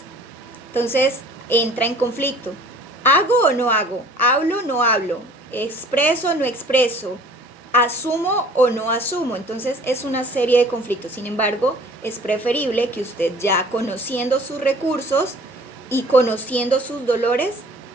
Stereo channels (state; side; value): normal; both; correlation 0.50